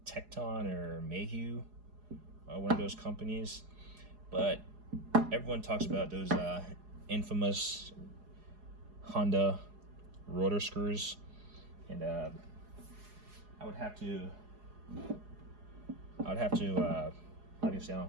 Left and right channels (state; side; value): late; left; 4.8 ms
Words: Thexton or Mayhew, one of those companies. But everyone talks about those infamous Honda rotor screws, and I would have to obviously